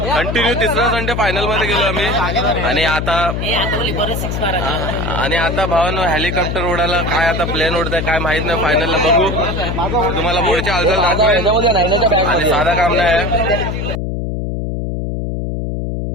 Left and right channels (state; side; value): noise; left; hum, 3 dB below the sound